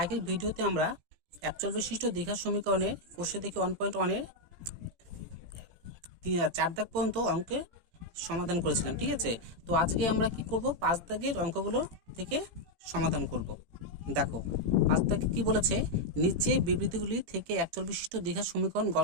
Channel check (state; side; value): late; left; 17 ms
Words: আগের ভিডিওতে আমরা একচল বিশিষ্ট দ্বিঘাত সমীকরণের কোষে দেখি 1.1-এর 4 দাগ পর্যন্ত অঙ্কের সমাধান করেছিলাম, ঠিক আছে। তো আজকে আমরা কি করব, 5 দাগের অঙ্কগুলো থেকে সমাধান করব। দেখো 5 দাগে কি বলেছে, নিচে বিবৃতিগুলি থেকে একচল বিশিষ্ট দ্বিঘাত সমীকরণ